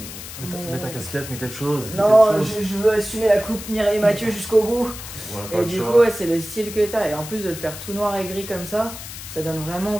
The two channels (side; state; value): left; noise; hiss, 11 dB below the sound